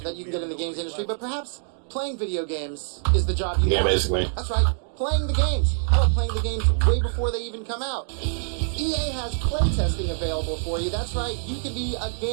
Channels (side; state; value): left; silent; digital silence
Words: that you can get in the games industry, but perhaps playing video games is the job you want. Basically. That's right. Playing the games. How about playing the games way before they even come out? EA has playtesting available for you. That's right. You can be a